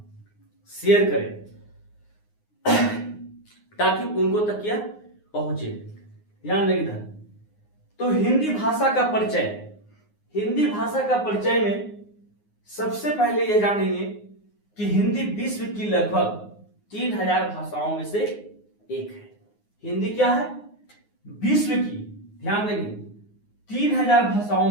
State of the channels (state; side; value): late; right; 9.6 ms